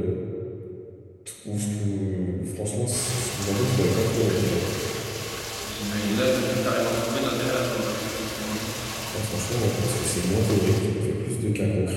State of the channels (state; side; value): identical; both; correlation 1.00